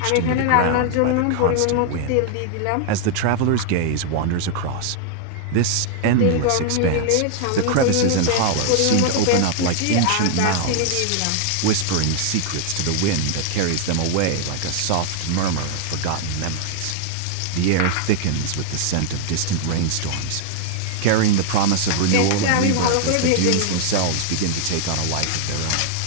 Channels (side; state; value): both; different; correlation -0.01